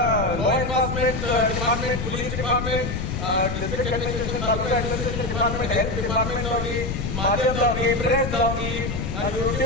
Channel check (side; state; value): left; noise; rumble, 3 dB below the sound